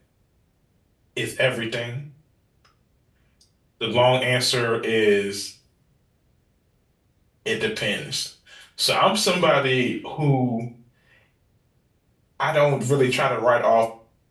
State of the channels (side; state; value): both; identical; correlation 1.00